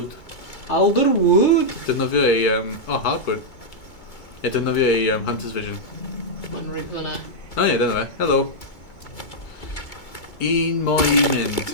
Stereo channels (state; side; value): late; right; 2.2 ms